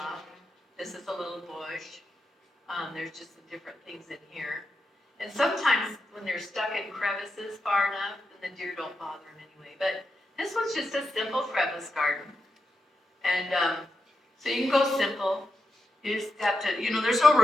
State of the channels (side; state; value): both; normal; correlation 0.87